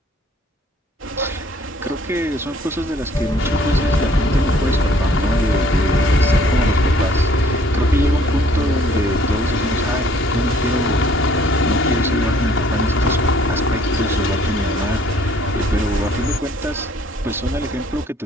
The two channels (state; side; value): normal; both; correlation 0.59